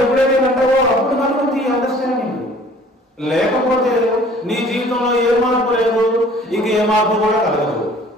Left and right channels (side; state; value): both; normal; correlation 0.52